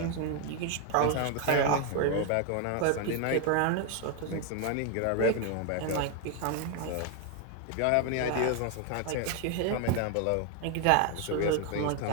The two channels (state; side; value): different; both; correlation 0.01